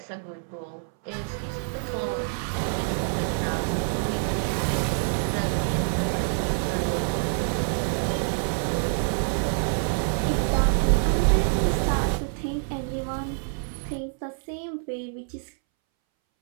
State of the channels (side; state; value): left; silent; 61 dB below the other